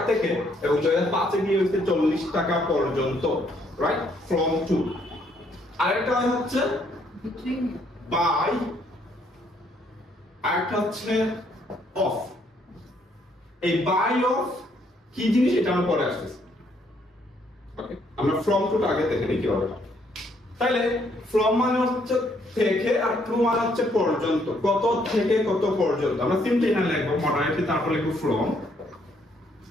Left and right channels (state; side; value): normal; both; correlation 0.69